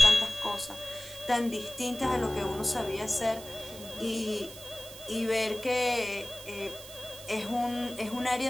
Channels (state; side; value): noise; right; hiss, 15 dB below the sound